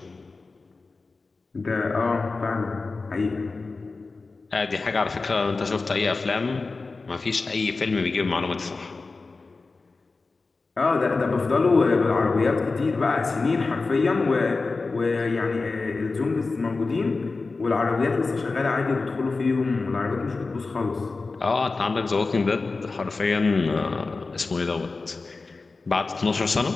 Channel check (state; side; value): quieter; right; 3.9 dB